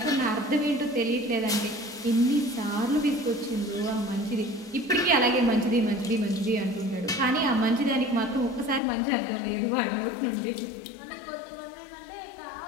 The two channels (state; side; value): drops out; right; at 8.8 s